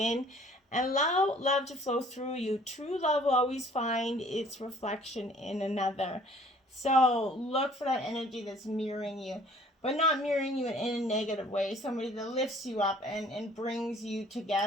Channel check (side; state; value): both; normal; correlation 0.55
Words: and allow love to flow through you. True love will always find its reflection in another. So look for that energy that's mirroring you, but not mirroring you in a negative way. Somebody that lifts you up and brings you